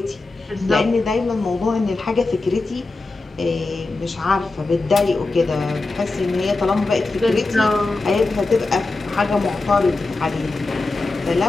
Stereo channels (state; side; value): quieter; right; 3.4 dB